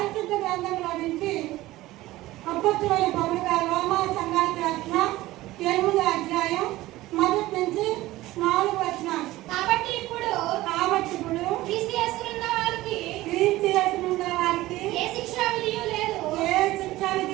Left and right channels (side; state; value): left; quieter; 17.3 dB